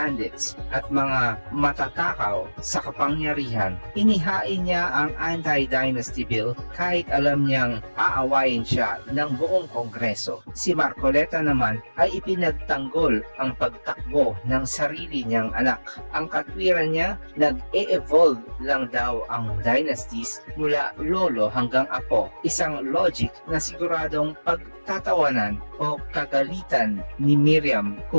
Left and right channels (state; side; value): inverted; both; correlation -1.00